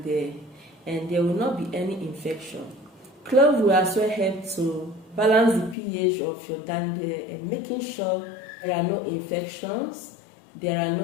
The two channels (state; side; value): drops out; right; at 5.8 s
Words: there and there will not be any infection. Clove will as well help to balance the pH of your down there and making sure there are no infections, there are